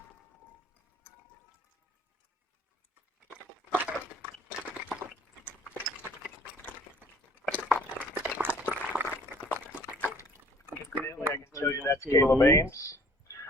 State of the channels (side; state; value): both; normal; correlation 0.55